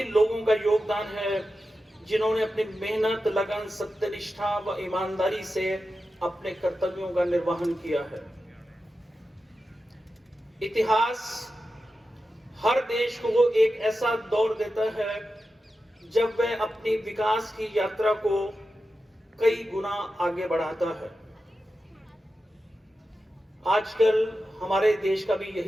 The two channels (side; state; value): both; normal; correlation 0.91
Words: लोगों का योगदान है जिन्होंने अपनी मेहनत, लगन, सत्यनिष्ठा व ईमानदारी से अपने कर्तव्यों का निर्वहन किया है। इतिहास हर देश को एक ऐसा दौर देता है जब वह अपनी विकास की यात्रा को कई गुना आगे बढ़ाता है। आजकल हमारे देश का भी